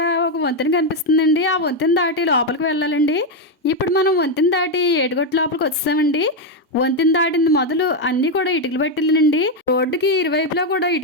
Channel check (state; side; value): normal; both; correlation 0.05